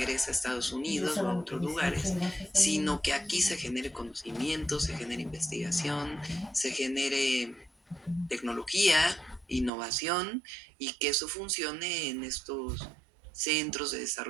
a Estados Unidos o a otros lugares, sino que aquí se genere conocimiento, se genere investigación, se genere tecnología, innovación y que eso funcione en estos centros de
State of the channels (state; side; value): drops out; left; at 9.7 s